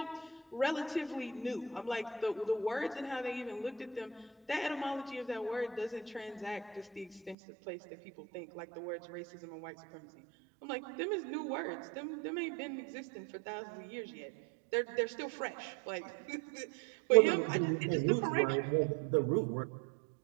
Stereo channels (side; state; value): left; drops out; at 7.4 s